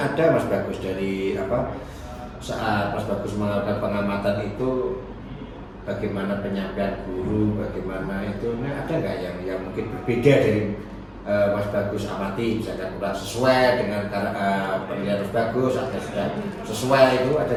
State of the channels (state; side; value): identical; both; correlation 1.00